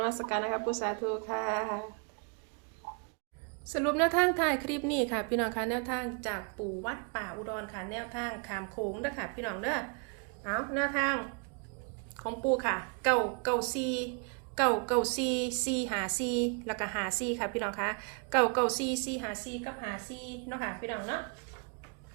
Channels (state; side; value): quieter; left; 37.2 dB